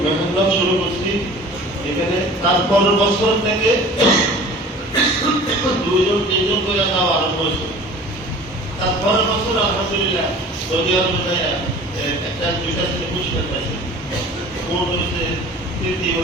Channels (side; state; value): both; normal; correlation 0.44